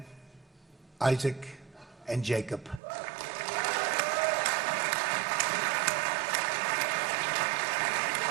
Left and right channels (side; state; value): left; drops out; at 2.8 s